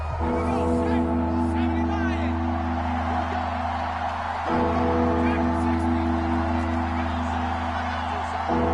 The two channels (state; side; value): identical; both; correlation 1.00